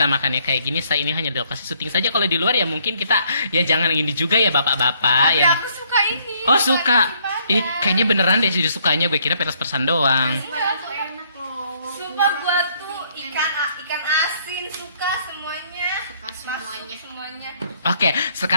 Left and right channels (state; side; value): inverted; both; correlation -0.67